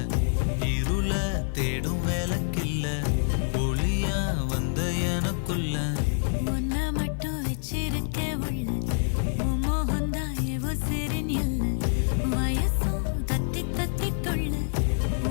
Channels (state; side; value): silent; right; digital silence